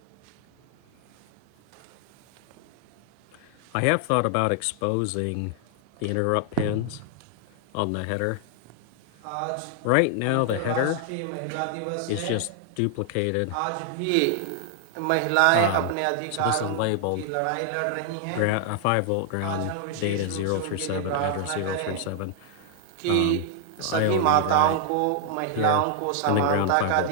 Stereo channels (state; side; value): different; both; correlation 0.00